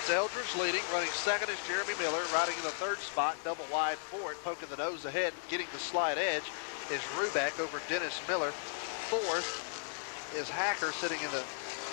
Eldridge leading, running second is Jeremy Miller, riding in the third spot, double wide for it, poking the nose ahead, getting the slide edge is Rubeck over Dennis Miller. Fourth is Hacker sitting in the,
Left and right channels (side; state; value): right; silent; 54 dB below the other